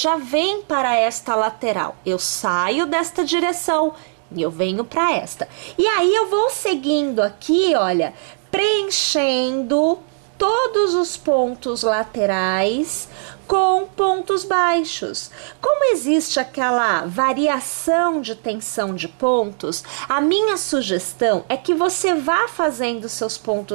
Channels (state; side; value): silent; left; digital silence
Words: vem para esta lateral. Eu saio desta direção e eu venho para esta. E aí eu vou seguindo aqui, olha, preenchendo todos os pontos laterais com pontos baixos. Como existe aquela variação de tensão de pontos, a minha sugestão é que você vá fazendo seus